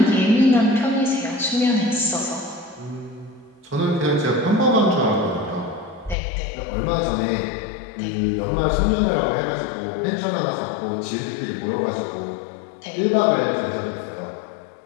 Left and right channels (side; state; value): right; drops out; at 6.2 s